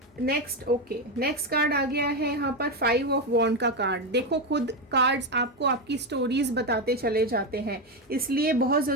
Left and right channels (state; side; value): normal; both; correlation 0.10